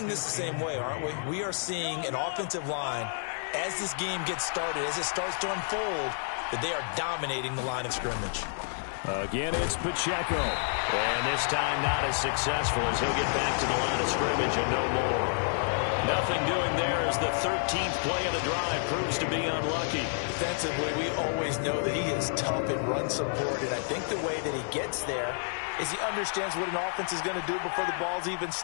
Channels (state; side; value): silent; right; digital silence